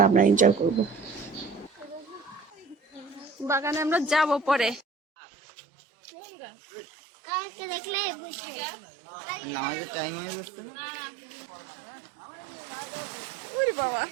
আমরা এনজয় করব। বাগানে আমরা যাব পরে। ওরে বাবা,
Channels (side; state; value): left; drops out; at 4.9 s